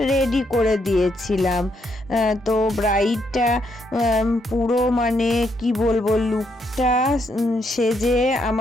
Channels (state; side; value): normal; both; correlation 0.76